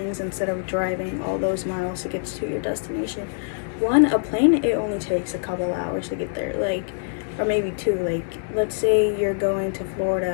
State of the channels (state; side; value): silent; right; digital silence